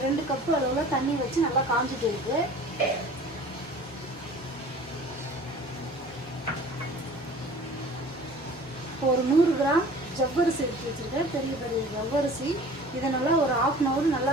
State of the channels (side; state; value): both; normal; correlation 0.45